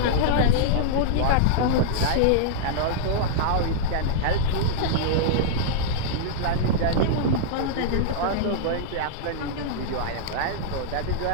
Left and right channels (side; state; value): both; different; correlation -0.02